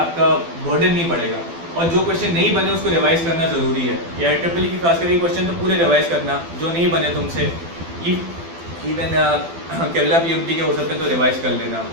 बर्डन नहीं बढ़ेगा। और जो क्वेश्चन नहीं बने उसको रिवाइज करना ज़रूरी है। AIEEE की खास करके क्वेश्चन तो पूरे रिवाइज करना, जो नहीं बने तुमसे, इवन केरला PMT के हो सकते हैं तो रिवाइज कर लेना,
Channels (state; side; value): late; left; 12 ms